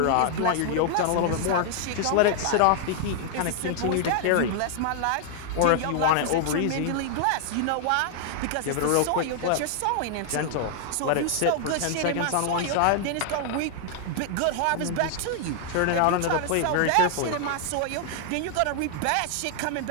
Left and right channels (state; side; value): different; both; correlation 0.00